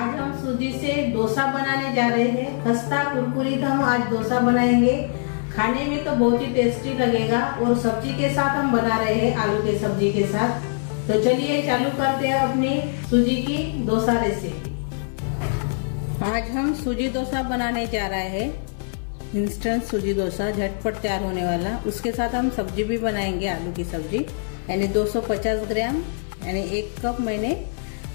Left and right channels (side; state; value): right; silent; 60 dB below the other